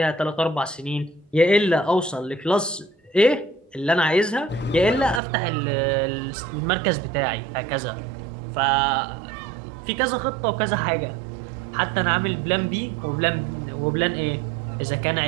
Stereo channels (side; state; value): left; drops out; at 5.2 s